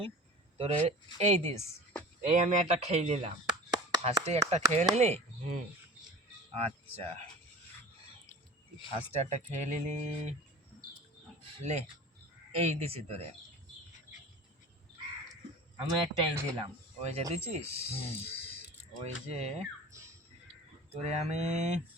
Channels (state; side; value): normal; both; correlation 0.38